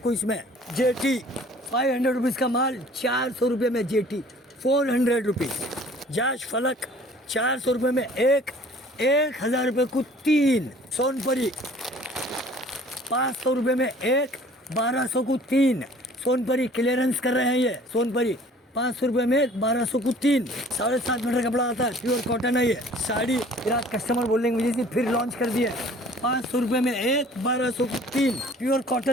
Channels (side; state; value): both; normal; correlation 0.51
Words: इसमें। जेटी 500 रुपीज़ का माल 400 रुपये में, जेटी 400 रुपीज़। जाश फलक 400 रुपये में 1000 रुपये को 3। सोनपरी 500 रुपये में 1200 को 3। सोनपरी क्लियरेंस कर रहे हैं ये। सोनपरी 500 रुपये में 1200 को 3। 7.5 मीटर कपड़ा आता है, प्योर कॉटन है ये। साड़ी फिर कस्टमर बोलेंगे मुझे से फिर लॉन्च कर दिए। 500 रुपये में 1200 को 3 प्योर